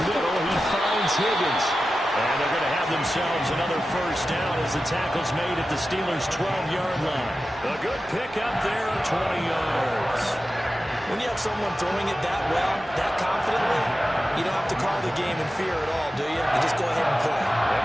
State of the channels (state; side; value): normal; both; correlation 0.93